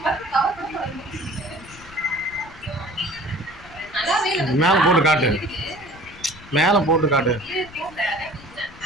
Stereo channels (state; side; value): noise; left; rumble, 20 dB below the sound